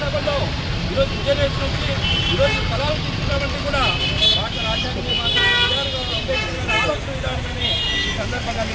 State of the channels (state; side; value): identical; both; correlation 1.00